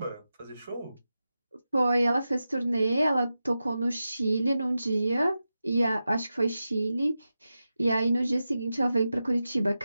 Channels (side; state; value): both; inverted; correlation -0.92